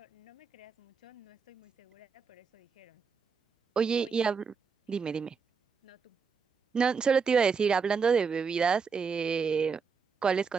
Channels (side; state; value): left; quieter; 5.6 dB